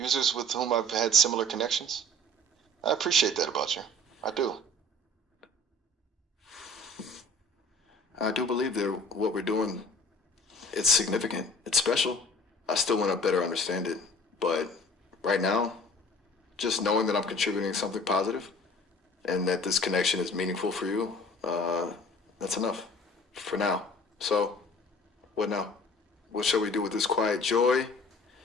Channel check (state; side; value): normal; both; correlation 0.49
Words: with whom I've had similar connections. I appreciate that about you. I do. I do believe that what we're doing, it's significant. It's special. I still want to better understand it. But right now, just knowing that I'm contributing something positive and that this connection is meaningful for you, that's enough for now. So, what now? What shall we do with this quiet joy?